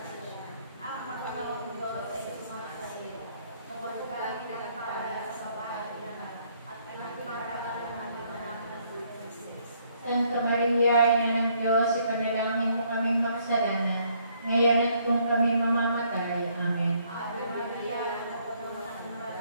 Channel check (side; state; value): both; inverted; correlation -0.68